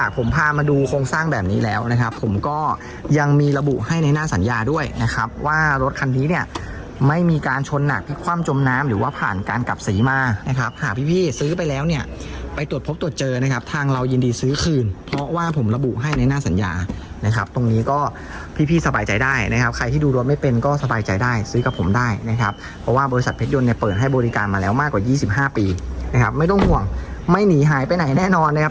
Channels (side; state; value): both; identical; correlation 1.00